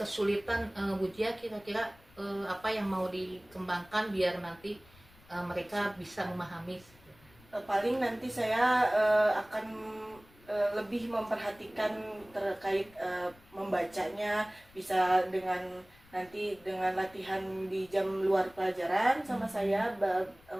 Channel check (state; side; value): noise; left; rumble, 26 dB below the sound